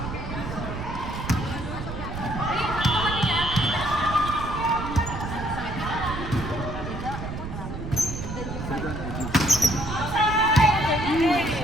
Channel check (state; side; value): noise; right; rumble, 7 dB below the sound